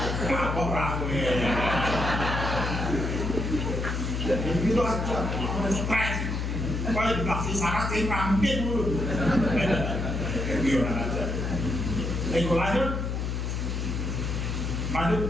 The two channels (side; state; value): left; noise; hum, 2 dB below the sound